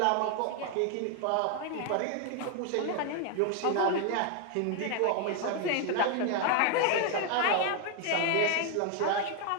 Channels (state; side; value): different; both; correlation 0.01